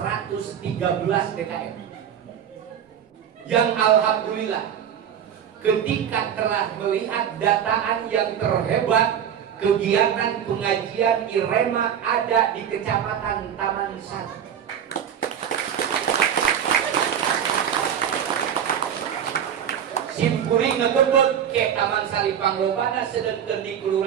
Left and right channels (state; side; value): quieter; left; 8.9 dB